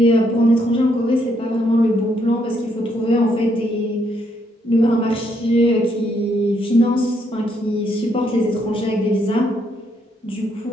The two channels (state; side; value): normal; both; correlation 0.73